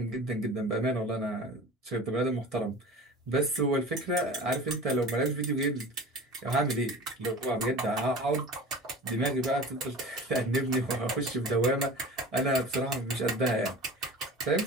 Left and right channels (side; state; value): both; normal; correlation 0.37